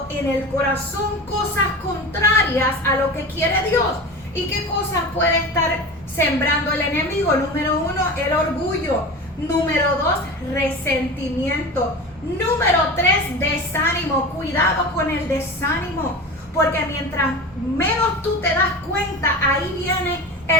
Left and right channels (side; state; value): both; normal; correlation 0.30